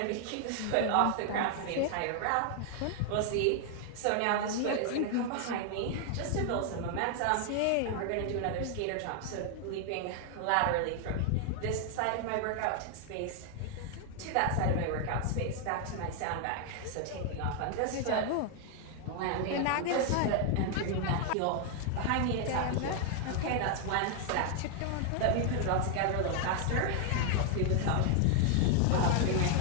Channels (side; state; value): both; different; correlation 0.00